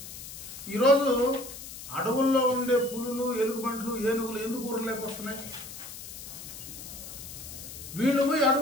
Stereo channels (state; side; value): noise; left; hiss, 12 dB below the sound